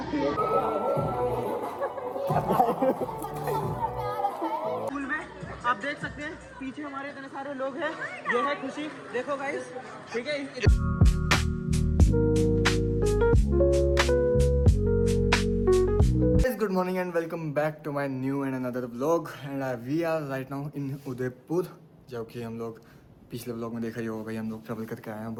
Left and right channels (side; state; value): both; identical; correlation 1.00